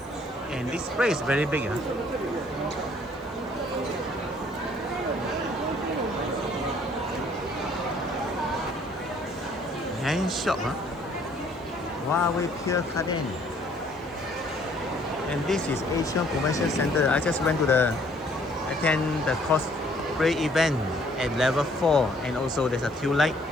And this place is very big. Hand shop. Huawei Pier Garden. And this is Asian Convention Center. I just went to attend the cosplay event at level 4, and also there's a queue light.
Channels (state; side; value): noise; right; hiss, 29 dB below the sound